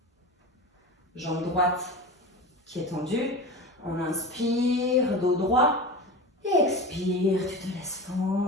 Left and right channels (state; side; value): normal; both; correlation 0.29